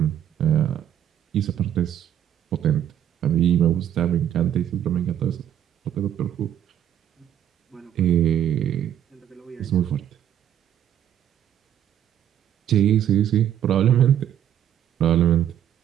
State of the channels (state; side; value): quieter; left; 10.4 dB